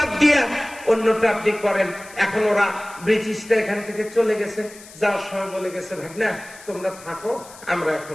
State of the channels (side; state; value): left; noise; hiss, 19 dB below the sound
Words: দিয়া অন্যটা আপনি করেন। এখন ওরা ব্রিটিশরা এখান থেকে চলে গেছে, যাওয়ার সময় বলে গেছে ভাগনা তোমরা থাকো, আমরা